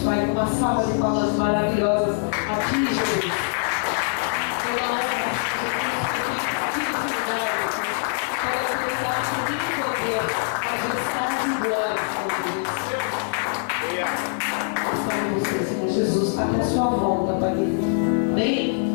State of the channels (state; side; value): silent; right; digital silence